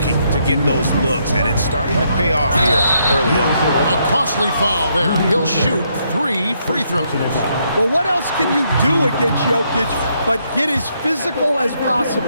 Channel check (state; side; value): inverted; both; correlation -0.75